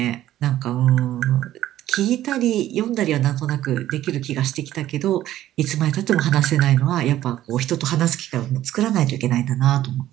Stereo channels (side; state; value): left; quieter; 13.4 dB